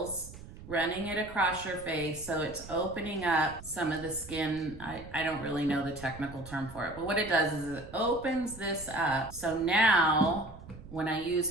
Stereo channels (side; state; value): right; noise; rumble, 16 dB below the sound